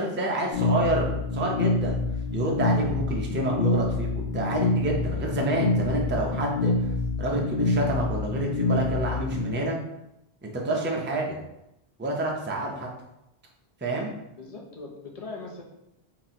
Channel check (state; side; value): normal; both; correlation -0.05